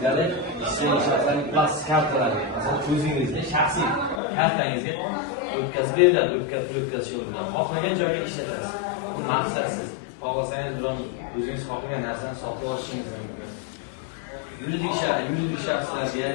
jismoniy shaxslarning plastik kartalari, masalan, o'zingizning shaxsiy kartangizga o'tkazib beriladi, o'tkazish yo'lida. Xohlagan joyga ishlatasiz. Bu maqsadsiz. Xohlasangiz bilan o'zingiz xohlagan narsani sotib olishingiz mumkin. Yuridik shaxslarga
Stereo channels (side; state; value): right; drops out; at 4.2 s